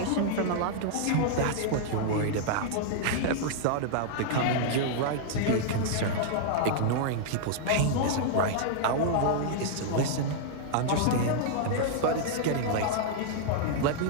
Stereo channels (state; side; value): different; both; correlation -0.01